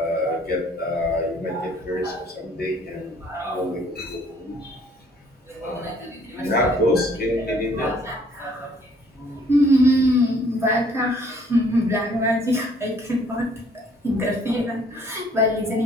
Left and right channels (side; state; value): both; normal; correlation 0.60